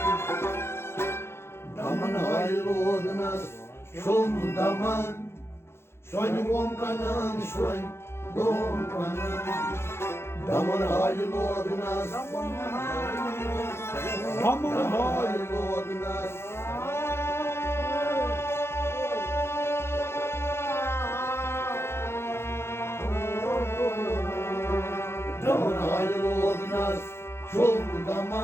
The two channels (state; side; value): late; right; 0.12 ms